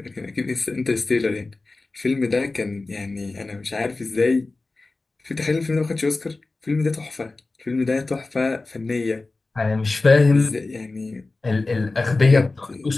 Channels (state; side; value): quieter; right; 3.4 dB